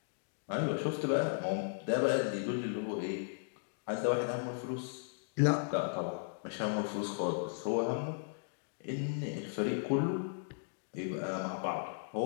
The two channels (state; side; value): silent; right; digital silence